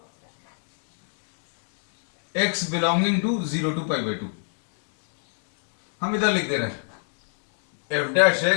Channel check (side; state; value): right; silent; 60 dB below the other